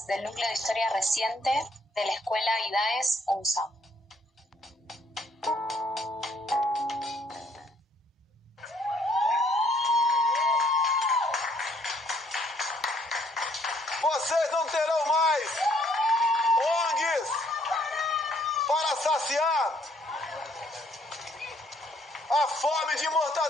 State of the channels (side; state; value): both; normal; correlation 0.66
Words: del Núcleo de Historia Reciente de la Escuela IDAES UNSAM. Vocês não terão mais ONGs para saciar a fome de